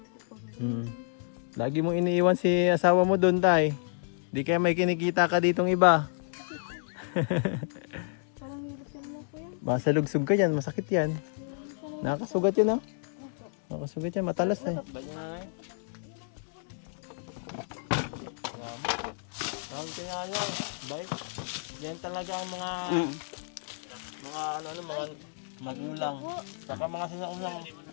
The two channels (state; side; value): silent; right; digital silence